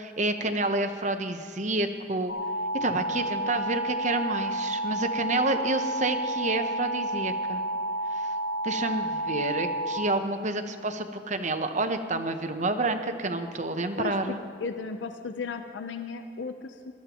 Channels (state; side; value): normal; both; correlation -0.02